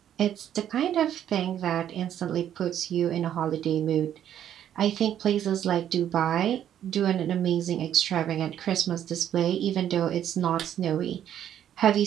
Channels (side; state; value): left; quieter; 10.4 dB